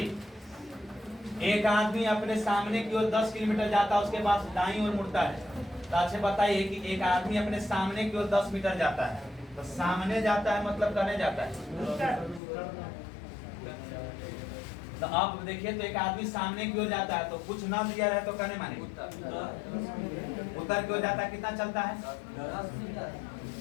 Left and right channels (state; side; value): drops out; right; at 12.4 s